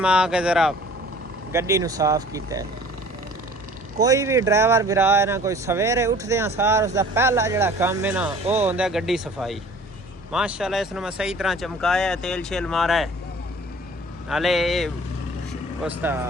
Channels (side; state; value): both; normal; correlation 0.48